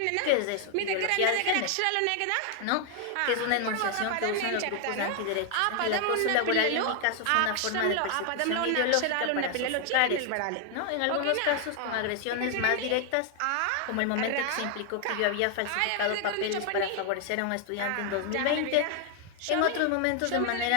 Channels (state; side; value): different; both; correlation 0.00